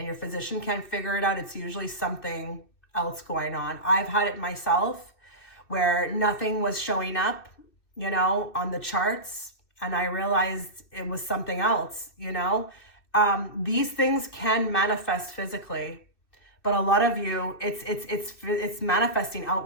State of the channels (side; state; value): right; late; 2.6 ms